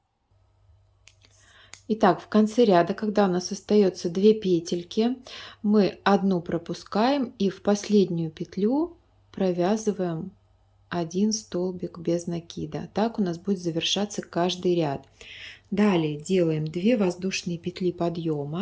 Итак, в конце ряда, когда у нас остается 2 петельки, мы одну пропускаем и в последнюю петлю провязываем 1 столбик без накида. Так у нас будет завершаться каждый ряд. Далее делаем 2 воздушные петли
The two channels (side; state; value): both; identical; correlation 1.00